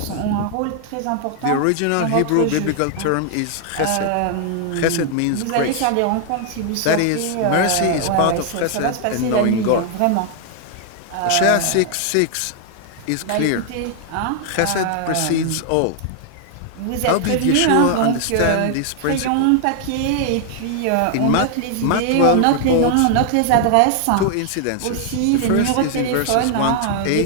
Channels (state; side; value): different; both; correlation 0.00